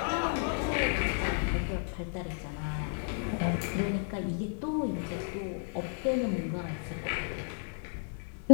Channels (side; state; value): right; silent; 57 dB below the other